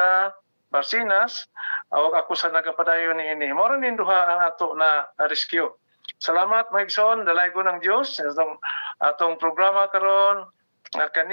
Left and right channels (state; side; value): inverted; both; correlation -1.00